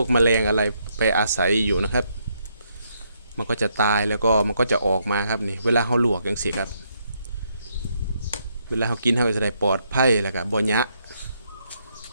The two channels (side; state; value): both; inverted; correlation -0.75